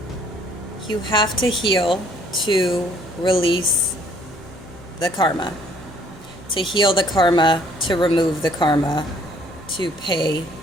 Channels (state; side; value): normal; both; correlation 0.61